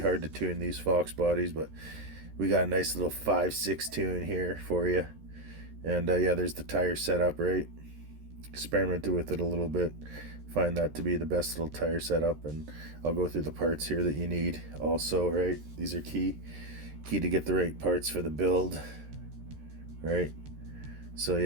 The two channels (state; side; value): late; left; 13 ms